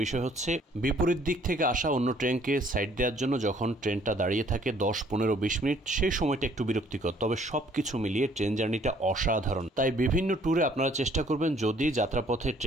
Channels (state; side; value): normal; both; correlation 0.61